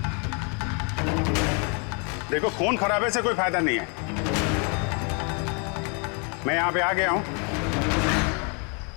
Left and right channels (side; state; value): right; quieter; 36.3 dB